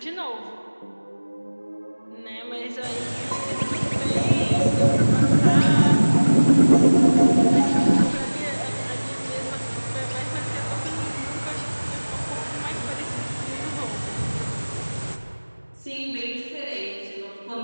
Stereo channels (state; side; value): inverted; both; correlation -1.00